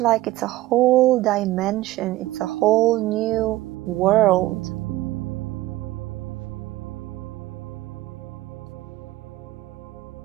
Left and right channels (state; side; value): quieter; left; 17.0 dB